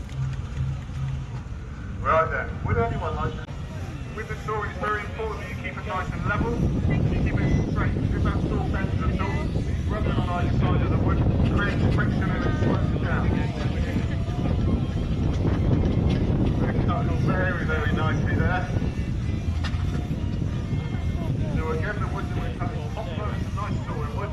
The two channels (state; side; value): identical; both; correlation 1.00